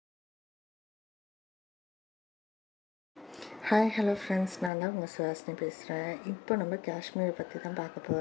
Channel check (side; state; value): right; drops out; at 4.7 s